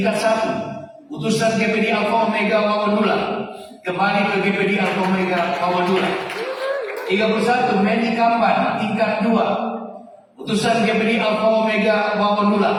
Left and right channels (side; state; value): both; identical; correlation 1.00